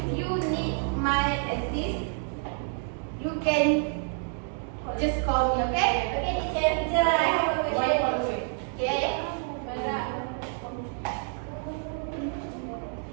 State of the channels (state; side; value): silent; left; 55 dB below the other